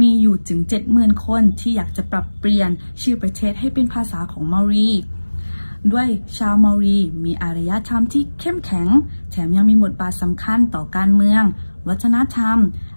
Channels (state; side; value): inverted; both; correlation -1.00